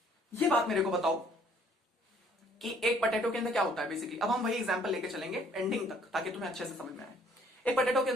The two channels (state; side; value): normal; both; correlation 0.60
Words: ये बात मेरे को बताओ, कि एक पोटैटो के अंदर क्या होता है बेसिकली। अब हम वही एग्जांपल लेके चलेंगे एंडिंग तक ताकि तुम्हें अच्छे से समझ में आए। एक पोटैटो के